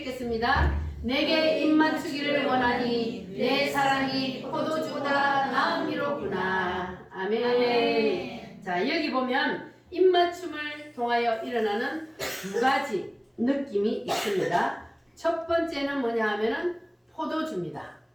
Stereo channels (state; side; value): identical; both; correlation 1.00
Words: 내게 입맞추기를 원하니 내 사랑이 포도주보다 나음이로구나. 아멘. 자, 여기 보면 입맞춤을 통하여 일어나는 두 가지 느낌이 있습니다. 첫 번째는 뭐냐 하면은 포도주입니다.